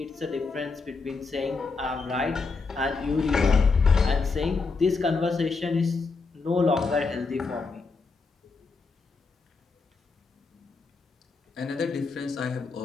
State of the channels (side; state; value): right; quieter; 4.3 dB